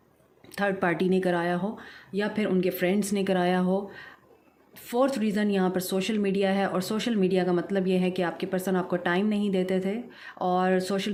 थर्ड पार्टी ने कराया हो, या फिर उनके फ्रेंड्स ने कराया हो। फोर्थ रीज़न यहाँ पर सोशल मीडिया है। और सोशल मीडिया का मतलब ये है कि आपके पर्सन आपको टाइम नहीं देते थे और सोशल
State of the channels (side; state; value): both; identical; correlation 1.00